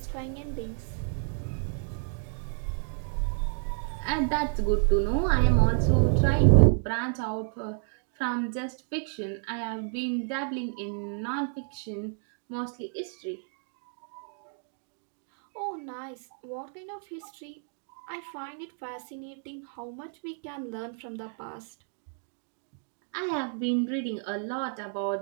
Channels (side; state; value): left; silent; 57 dB below the other